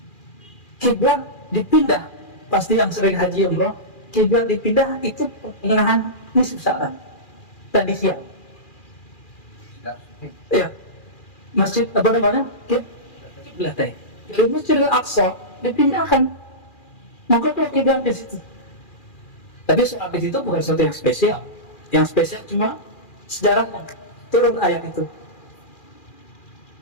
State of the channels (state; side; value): late; right; 2.4 ms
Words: Kiblat dipindah. Pasti yang sering haji umroh, kiblat dipindah itu pertengahan nisfu Sya'ban. Tadi siang. Iya. Masjid apa namanya? Kiblat. Jadi Masjid Al-Aqsa dipindahkan. Maka kalau kiblat di situ. Tapi soal di situ bukan sesuatu yang spesial. Yang spesial cuma sejarah turun ayat itu.